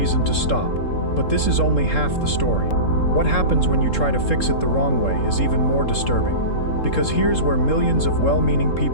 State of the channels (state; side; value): late; right; 3.7 ms